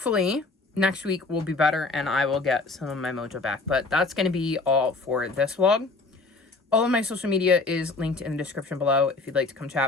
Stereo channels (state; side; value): quieter; right; 3.6 dB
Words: next week will be better and I will get some of my mojo back. But that's going to be all for this vlog. All of my social media is linked in the description below if you'd like to come